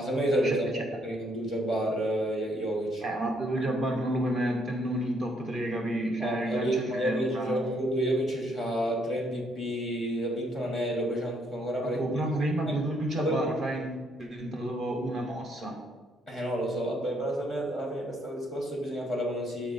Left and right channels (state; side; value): normal; both; correlation 0.70